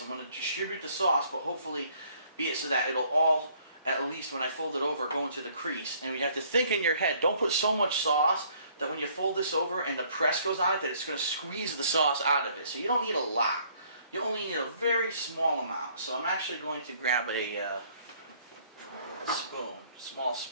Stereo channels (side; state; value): both; inverted; correlation -0.61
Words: I'm going to distribute the sauce, but hopefully be it so that it'll all, at least when I fold it over, go into the crease. And you have to think in your head, don't put so much sauce that when you fold this over and the press goes on it, that it's going to squeeze the sauce out of it. So you don't need a lot. You only need a very small amount. So I'm actually going to grab a spoon, small